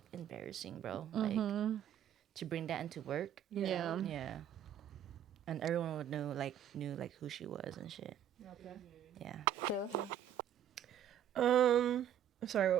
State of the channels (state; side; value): quieter; left; 9.9 dB